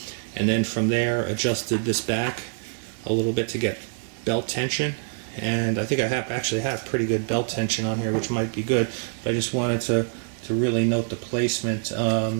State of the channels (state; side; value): silent; left; 59 dB below the other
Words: and then from there adjusted this back a little bit to get belt tension. And I think I actually have pretty good belt tension on here, which might be good, but I just wanted to really note the placement